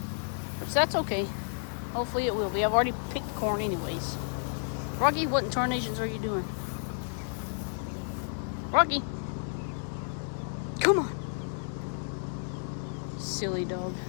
Which that's okay. Hopefully it will be. I've already picked corn anyways. Rocky, what in tarnations are you doing? Rocky. Come on. Silly dog.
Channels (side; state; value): right; silent; digital silence